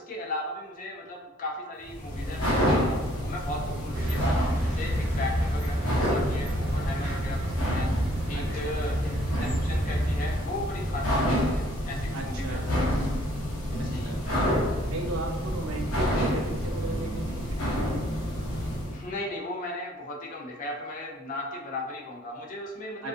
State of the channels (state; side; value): normal; both; correlation 0.62